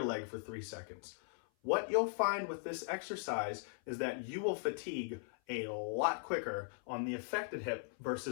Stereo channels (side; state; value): right; silent; 52 dB below the other